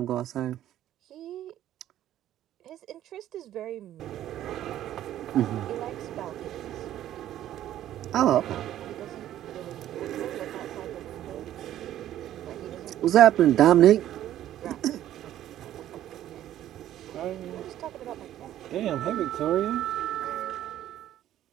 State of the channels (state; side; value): quieter; left; 12.4 dB